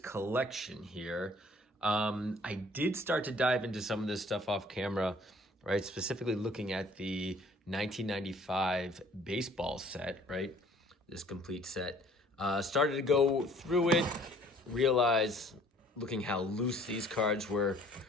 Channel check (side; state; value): both; normal; correlation 0.56